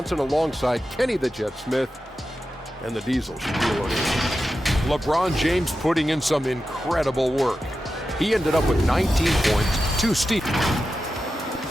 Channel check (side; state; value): both; normal; correlation 0.91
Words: alongside Kenny the Jet Smith and the Diesel, Shaquille O'Neal. LeBron James putting in some incredible work. He ended up with 19 points, 2 steals.